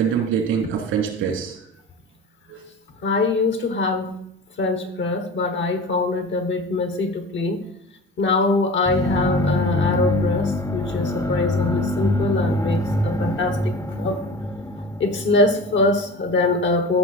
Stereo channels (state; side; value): normal; both; correlation 0.35